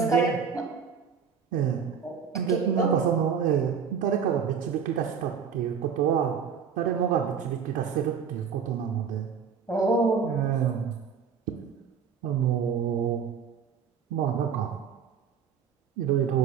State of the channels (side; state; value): left; quieter; 6.8 dB